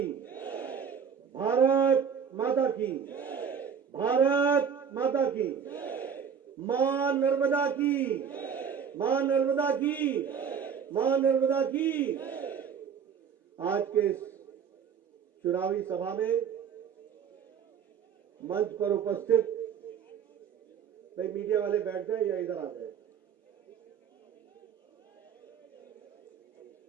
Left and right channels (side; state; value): left; quieter; 7.2 dB